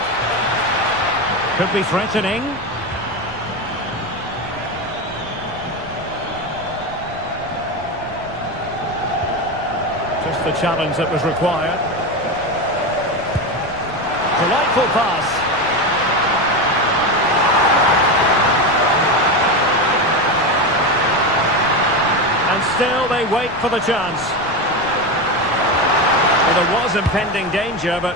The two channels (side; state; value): left; noise; rumble, 19 dB below the sound